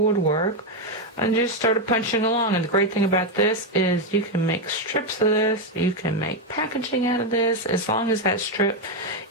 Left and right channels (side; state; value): both; normal; correlation 0.05